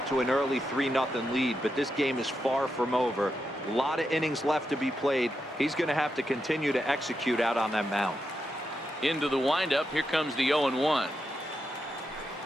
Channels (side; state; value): both; normal; correlation 0.85